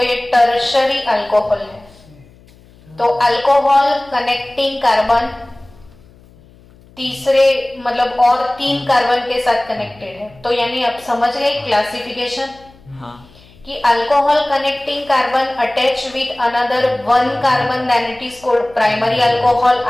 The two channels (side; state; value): left; noise; hum, 26 dB below the sound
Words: ये टर्शरी अल्कोहल है। तो अल्कोहल कनेक्टिंग कार्बन तीसरे मतलब और 3 कार्बन के साथ कनेक्टेड है, तो यानी आप समझ गए क्लासिफिकेशन कि alcohol connecting carbon attach with another 1 carbon then it is called primary alcohol.